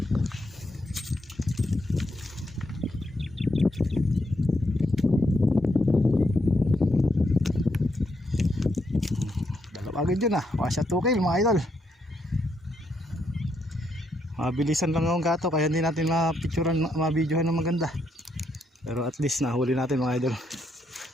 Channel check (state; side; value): normal; both; correlation 0.78